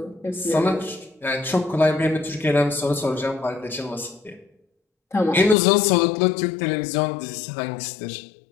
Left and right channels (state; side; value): drops out; right; at 5.6 s